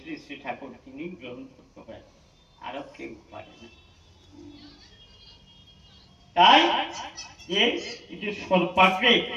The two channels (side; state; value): both; identical; correlation 1.00